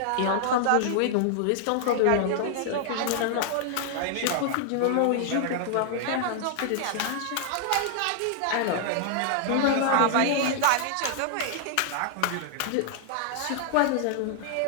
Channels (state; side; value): different; both; correlation -0.01